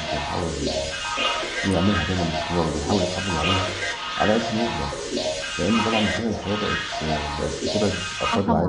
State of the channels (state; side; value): identical; both; correlation 1.00